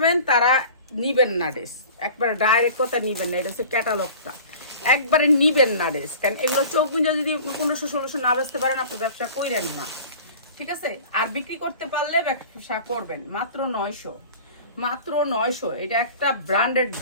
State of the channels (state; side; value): inverted; both; correlation -0.41